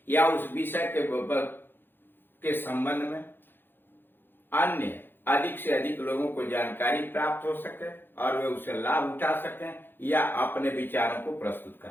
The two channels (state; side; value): late; right; 0.10 ms